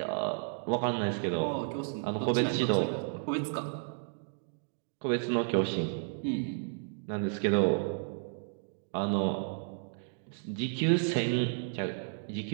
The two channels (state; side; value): silent; left; digital silence